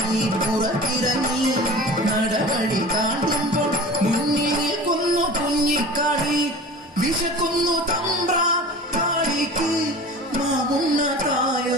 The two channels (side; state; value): both; normal; correlation 0.38